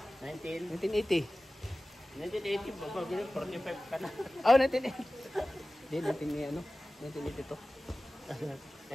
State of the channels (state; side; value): normal; both; correlation 0.97